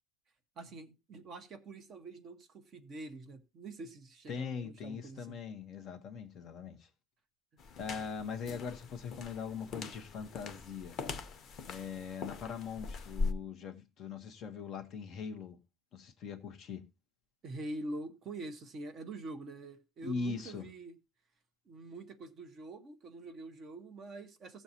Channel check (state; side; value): quieter; right; 3.3 dB